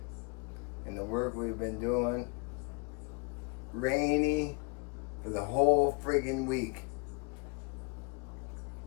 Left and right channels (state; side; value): quieter; right; 32.7 dB